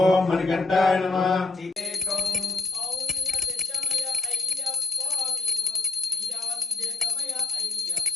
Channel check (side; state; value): right; quieter; 3.6 dB